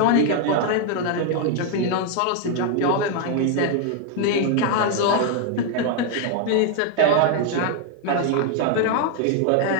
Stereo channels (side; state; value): both; different; correlation 0.00